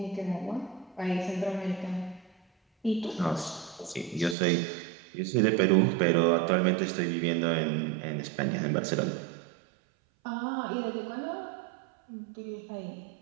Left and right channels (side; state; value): left; drops out; at 4.4 s